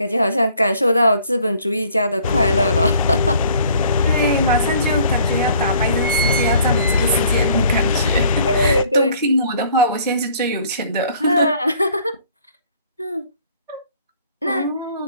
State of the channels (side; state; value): both; inverted; correlation -0.57